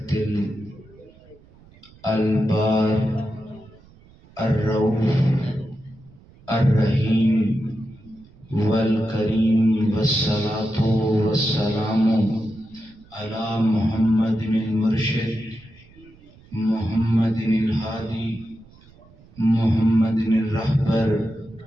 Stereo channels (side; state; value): right; noise; rumble, 26 dB below the sound